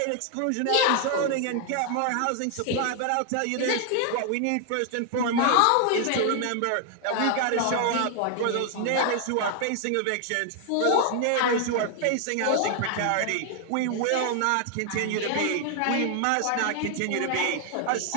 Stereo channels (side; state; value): both; different; correlation 0.00